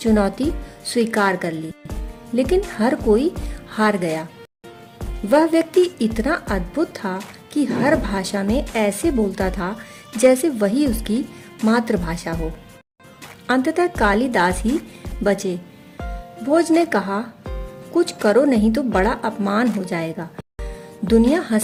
स्वीकार कर ली, लेकिन हर कोई हार गया। वह व्यक्ति इतना अद्भुत था कि हर भाषा में ऐसे बोलता था जैसे वही उसकी मातृभाषा हो। अंततः कालिदास ही बचे। भोज ने कहा, कुछ करो नहीं तो बड़ा अपमान हो जाएगा। दुनिया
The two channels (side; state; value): both; identical; correlation 1.00